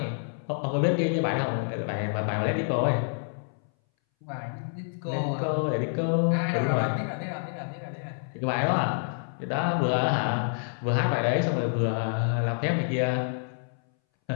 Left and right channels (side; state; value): right; silent; 59 dB below the other